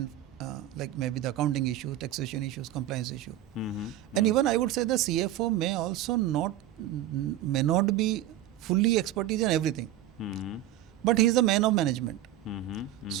like maybe the accounting issues, taxation issues, compliance issue. And even I would say the CFO may also may not be fully expertise in everything, but he is the man of management.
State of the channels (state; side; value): quieter; left; 12.5 dB